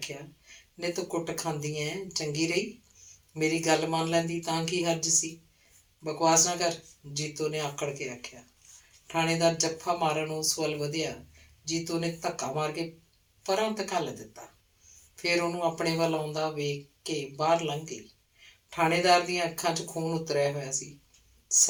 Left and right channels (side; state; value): both; identical; correlation 1.00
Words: ਨੇ ਤੂੰ ਕੁੱਟ ਖਾਂਦੀ ਐ, ਚੰਗੀ ਰਹੀ, ਮੇਰੀ ਗੱਲ ਮੰਨ ਲੈਂਦੀ ਤਾਂ ਕੀ ਹਰਜ ਸੀ। ਬਕਵਾਸ ਨਾ ਕਰ, ਜੀਤੋ ਨੇ ਆਕੜ ਕੇ ਆਖਿਆ। ਥਾਣੇਦਾਰ ਜੱਫਾ ਮਾਰਨ ਉਸ ਵੱਲ ਵਧਿਆ। ਜੀਤੋ ਨੇ ਧੱਕਾ ਮਾਰ ਕੇ ਪਰਾਂ ਧਕੱਲ ਦਿੱਤਾ। ਫਿਰ ਉਹਨੂੰ ਆਪਣੇ ਵੱਲ ਆਉਂਦਾ ਵੇਖ ਕੇ ਬਾਹਰ ਲੰਘ ਗਈ। ਥਾਣੇਦਾਰ ਦੀਆਂ ਅੱਖਾਂ 'ਚ ਖੂਨ ਉਤਰਿਆ ਹੋਇਆ ਸੀ।